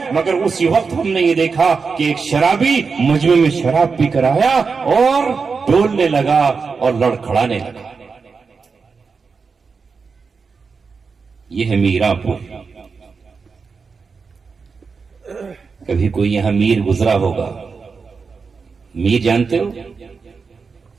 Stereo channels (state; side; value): quieter; left; 5.0 dB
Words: مگر اسی وقت ہم نے یہ دیکھا کہ ایک شرابی مجمع میں شراب پی کر آیا اور ڈولنے لگا اور لڑکھڑانے لگا. یہ ہے میرا پور. کبھی کوئی یہاں میر گزرا ہوگا. میر جانتے ہو؟